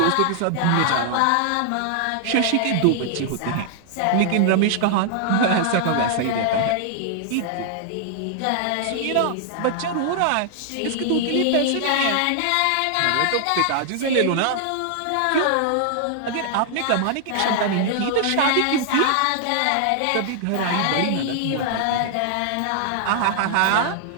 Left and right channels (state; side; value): different; both; correlation -0.01